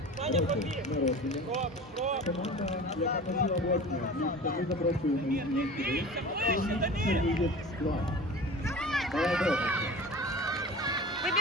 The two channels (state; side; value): normal; both; correlation 0.37